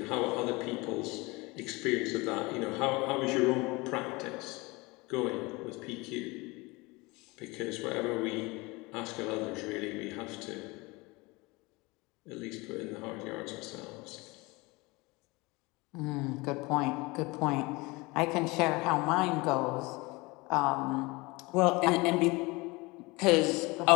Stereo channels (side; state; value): right; quieter; 24.3 dB